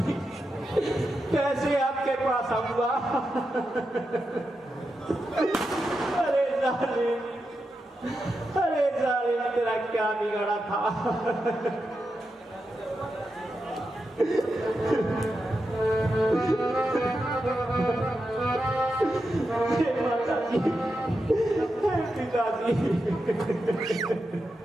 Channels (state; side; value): normal; both; correlation 0.88